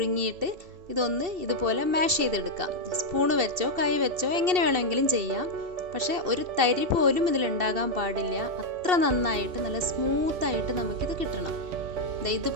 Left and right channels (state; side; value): late; left; 2.7 ms